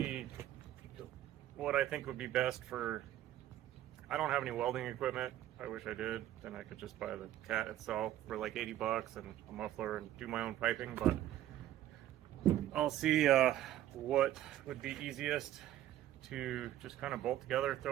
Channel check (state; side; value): quieter; left; 13.1 dB